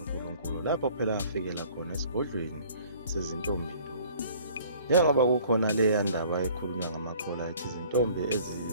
lapho phela afikela khona esigodlweni sezintombi nto. Njengoba kukhona leya ndaba ekhulunywa ngamakholwa ethi izintombi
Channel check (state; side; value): inverted; both; correlation -0.53